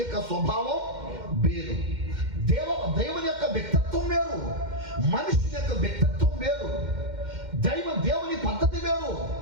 యొక్క స్వభావం వేరు. దేవుని యొక్క వ్యక్తిత్వం వేరు, మనుషుని యొక్క వ్యక్తిత్వం వేరు. దేవుని పద్ధతి వేరు,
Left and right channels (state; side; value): late; left; 2.1 ms